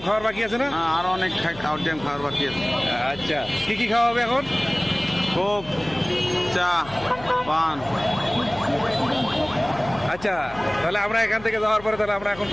খাওয়ার বাকি আছে না? হ্যাঁ, আরো অনেক খাওয়ার টাইম খাওয়ার বাকি আছে। আচ্ছা, কি কি খাওয়া হবে এখন? কোক, চা, পান। আচ্ছা, তাহলে আমরা এখান থেকে যাওয়ার পরে তাহলে আমরা এখন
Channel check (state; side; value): noise; left; hum, 18 dB below the sound